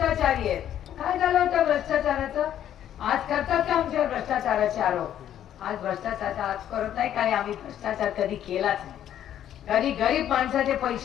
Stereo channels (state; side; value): quieter; right; 10.8 dB